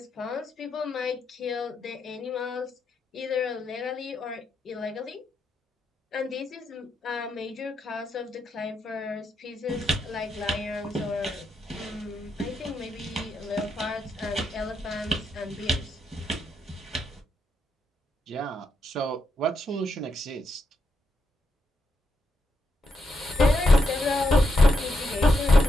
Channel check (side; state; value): both; normal; correlation 0.82